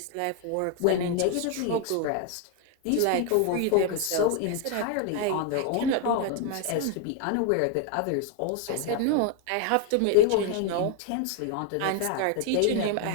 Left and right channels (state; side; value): different; both; correlation 0.01